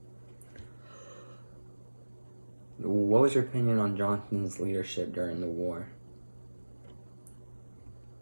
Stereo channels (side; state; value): both; inverted; correlation -1.00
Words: What was your opinion on Johnson's leadership during the war?